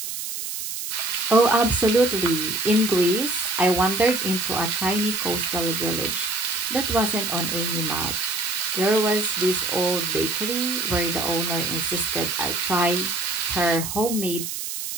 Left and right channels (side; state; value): right; noise; hiss, 5 dB below the sound